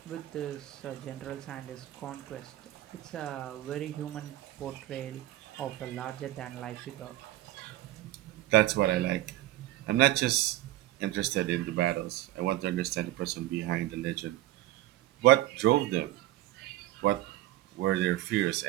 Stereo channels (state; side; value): quieter; left; 15.3 dB